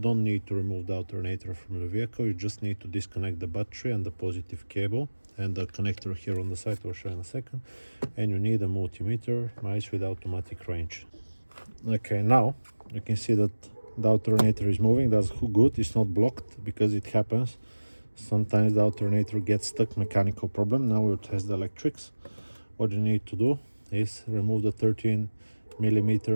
need to remove the alternator from the vehicle, you just need to disconnect the battery and the positive cable and the connector here on the side. I'll show you in a second. And you need a multimeter, nice with automatic range. Okay, now you can see that the alternator is moving. That's good, it's not blocked, because it happens. Sometimes the alternator gets stuck, mechanical problem. Now we'll test the electrics. What you need to do is remove the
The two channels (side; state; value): both; inverted; correlation -1.00